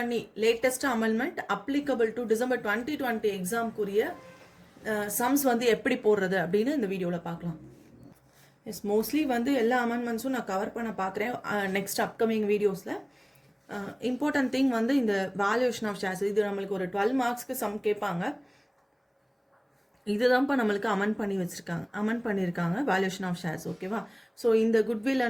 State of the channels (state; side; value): identical; both; correlation 1.00